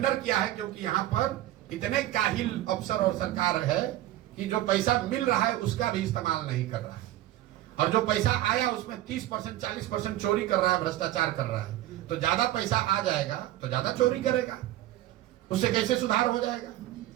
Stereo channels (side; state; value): left; quieter; 14.6 dB